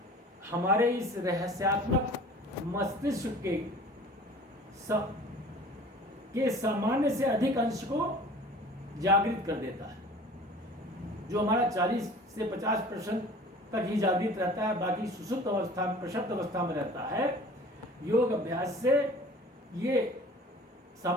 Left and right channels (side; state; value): both; normal; correlation 0.45